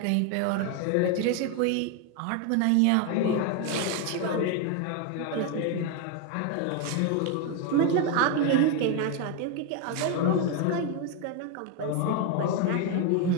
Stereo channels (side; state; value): both; different; correlation 0.02